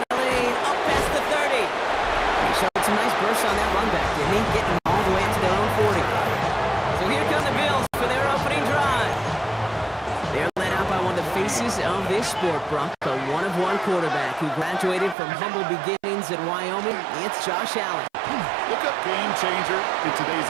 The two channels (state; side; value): drops out; left; at 15.2 s